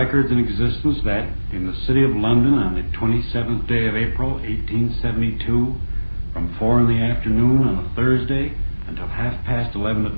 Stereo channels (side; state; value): both; inverted; correlation -1.00